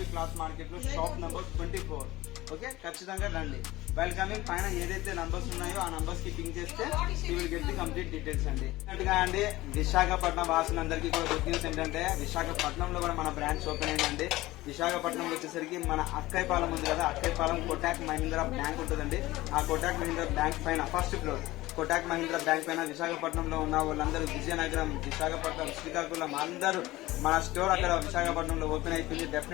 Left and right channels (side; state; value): right; quieter; 18.1 dB